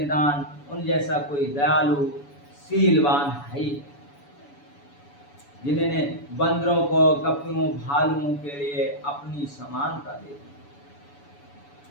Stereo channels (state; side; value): late; right; 7.0 ms